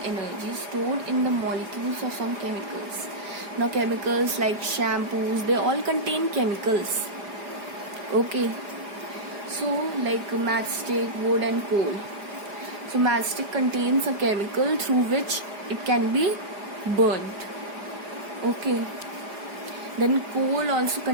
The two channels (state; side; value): late; left; 4.9 ms